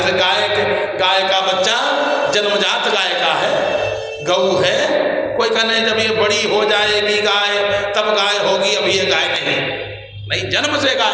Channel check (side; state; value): both; identical; correlation 1.00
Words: गाय का बच्चा जन्मजात गाय का है, गऊ है, कोई कहने जब ये बड़ी हो जाएगी गाय तब गाय होगी, अभी ये गाय नहीं, जन्म से